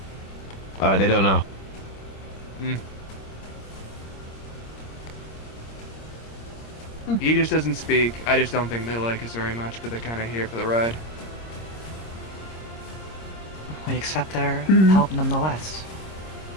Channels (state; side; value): late; right; 26 ms